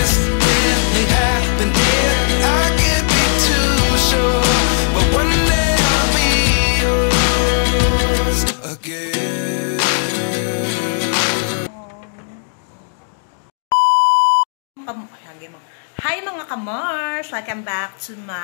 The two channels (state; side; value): silent; right; digital silence